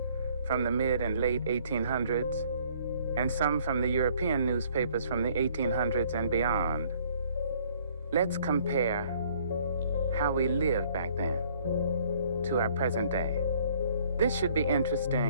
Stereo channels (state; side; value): inverted; both; correlation -0.60